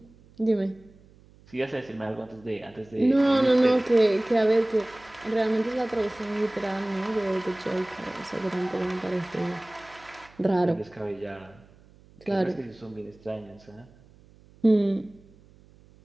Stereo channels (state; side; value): noise; right; hum, 27 dB below the sound